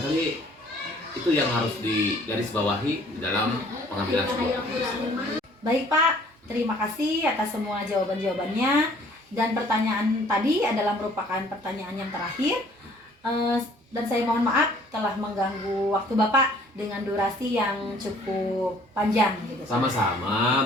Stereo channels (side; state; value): both; normal; correlation 0.57